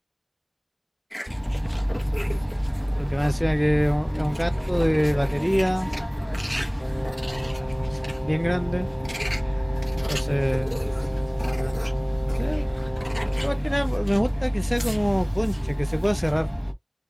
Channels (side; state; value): both; identical; correlation 1.00